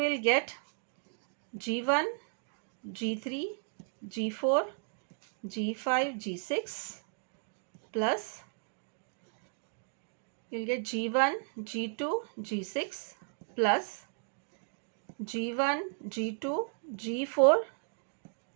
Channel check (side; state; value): left; silent; 55 dB below the other